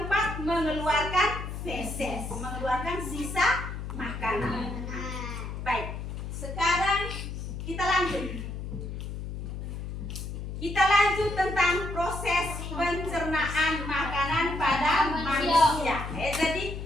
mengeluarkan feses, mengeluarkan sisa makanan. Baik, sekarang kita lanjut. Kita lanjut tentang proses pencernaan makanan pada manusia. Jadi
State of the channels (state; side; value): noise; left; hum, 7 dB below the sound